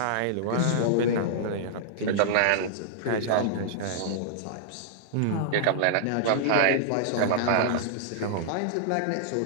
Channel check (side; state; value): both; different; correlation -0.02